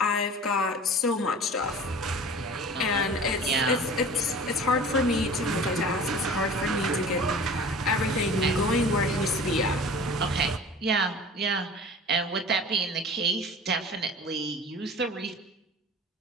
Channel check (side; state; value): both; normal; correlation 0.41